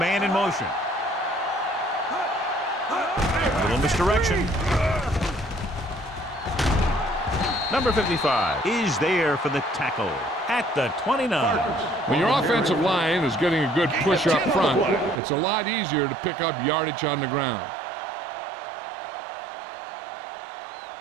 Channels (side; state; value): left; drops out; at 15.2 s